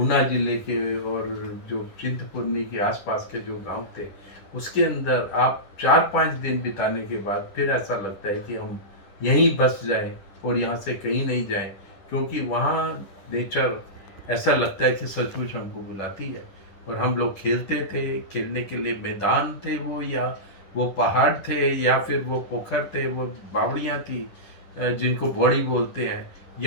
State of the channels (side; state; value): right; late; 10 ms